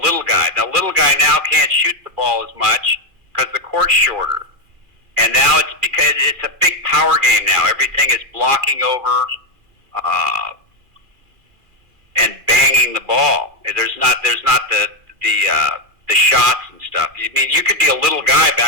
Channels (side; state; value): left; late; 2.4 ms